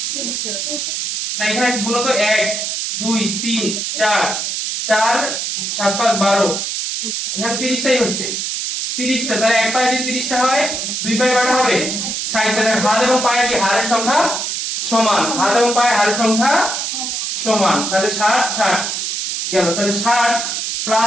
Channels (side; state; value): right; noise; hiss, 2 dB below the sound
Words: না, এখানে গুণ তো 1 2 3 4 4 7 5 12, এখানে 30টাই হচ্ছে। 30টা। তাহলে এক পায়ে যদি 30টা হয়, দুই পায়ে কয়টা হবে? 60টা। হাত এবং পায়ের কি হাড়ের সংখ্যা সমান? হাত এবং পায়ের হাড়ের সংখ্যা সমান। তাহলে 60 60 গেল। তাহলে 60